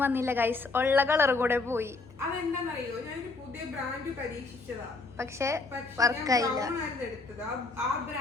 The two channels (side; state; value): right; quieter; 3.7 dB